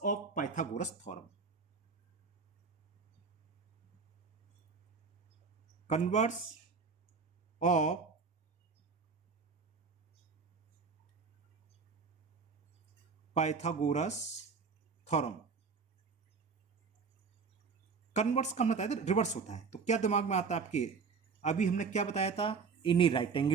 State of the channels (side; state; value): left; quieter; 5.2 dB